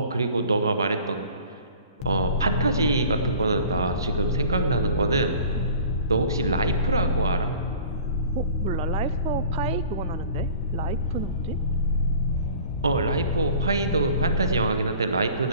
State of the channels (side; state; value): both; inverted; correlation -0.46